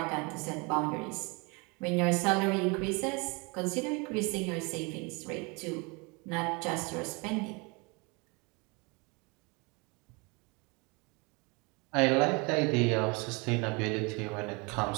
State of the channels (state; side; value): quieter; left; 29.2 dB